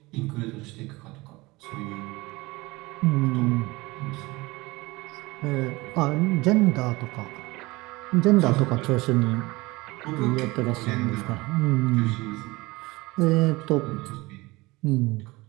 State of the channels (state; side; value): quieter; left; 21.9 dB